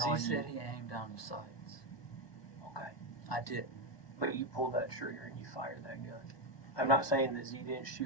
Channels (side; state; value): right; late; 1.2 ms